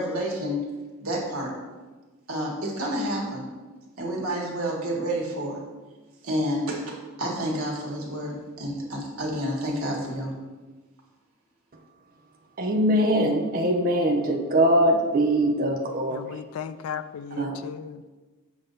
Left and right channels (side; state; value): both; normal; correlation 0.17